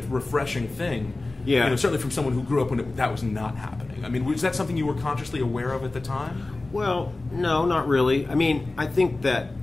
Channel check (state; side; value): quieter; right; 3.2 dB